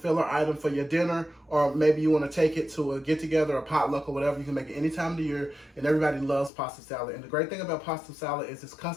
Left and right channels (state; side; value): drops out; right; at 6.5 s